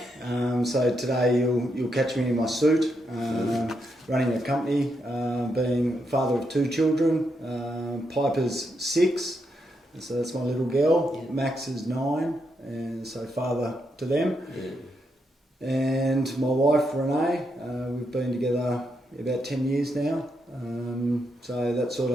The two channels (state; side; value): normal; both; correlation 0.81